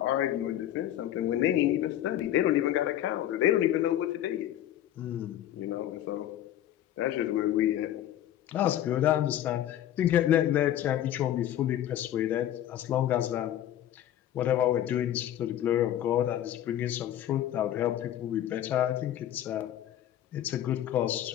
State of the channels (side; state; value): right; quieter; 11.9 dB